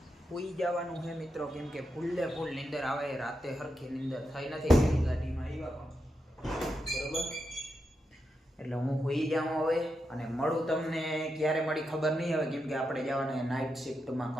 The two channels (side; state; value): both; normal; correlation 0.86